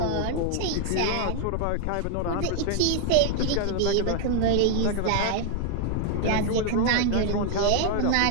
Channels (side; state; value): both; different; correlation 0.00